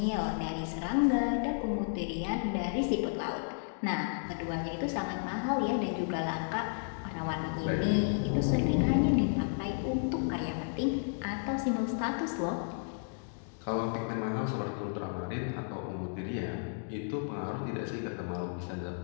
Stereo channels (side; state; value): right; silent; digital silence